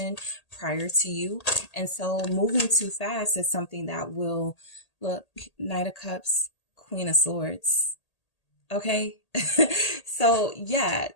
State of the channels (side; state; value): right; late; 1.8 ms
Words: prior to you. And so moving too fast is something that will, look, Knight of Cups, Queen of Swords. Okay. So yeah,